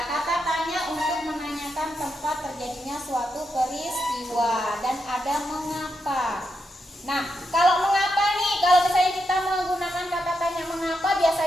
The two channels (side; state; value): both; normal; correlation 0.84